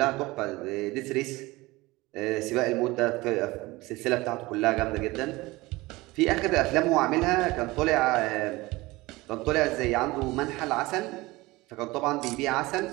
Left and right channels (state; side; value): quieter; left; 20.9 dB